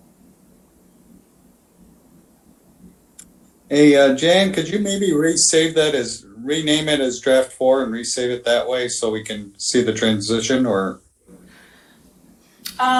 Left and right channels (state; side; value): identical; both; correlation 1.00